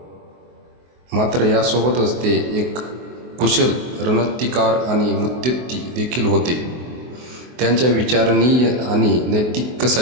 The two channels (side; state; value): left; late; 24 ms